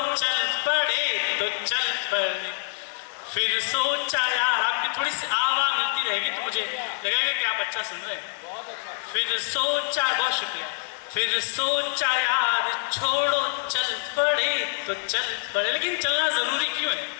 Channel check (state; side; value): silent; right; digital silence